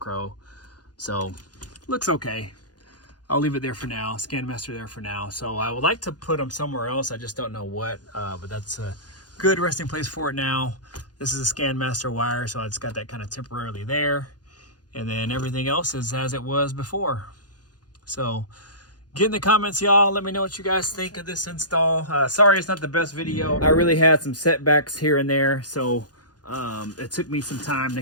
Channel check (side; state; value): right; late; 0.69 ms